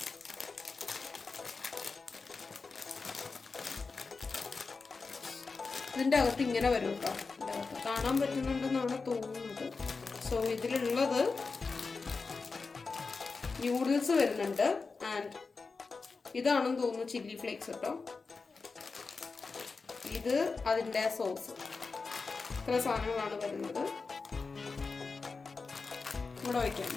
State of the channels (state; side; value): quieter; right; 4.4 dB